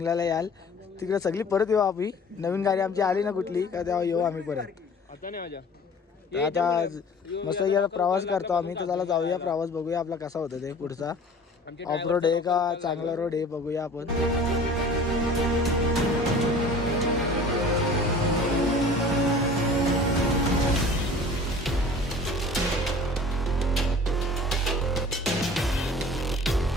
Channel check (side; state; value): both; normal; correlation 0.45